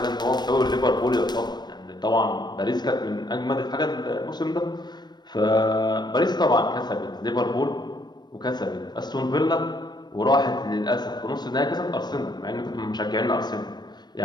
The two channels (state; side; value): late; right; 0.21 ms